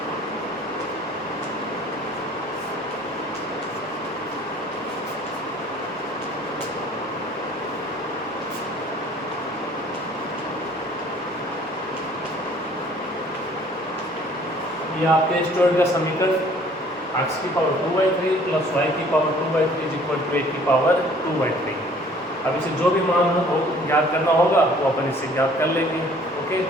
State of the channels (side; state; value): both; normal; correlation 0.55